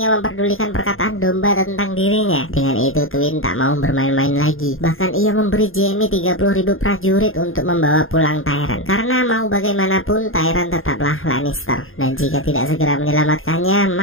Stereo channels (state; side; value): late; right; 0.60 ms